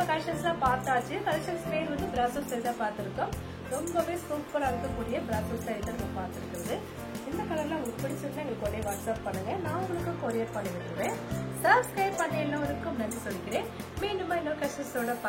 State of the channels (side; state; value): both; identical; correlation 1.00